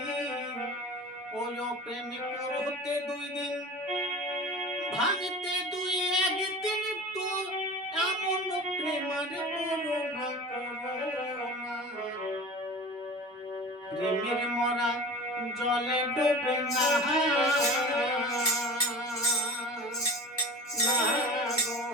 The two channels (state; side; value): normal; both; correlation 0.37